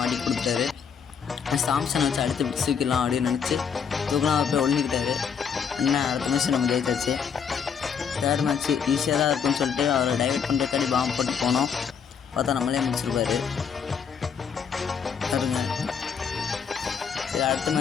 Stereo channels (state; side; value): quieter; right; 6.9 dB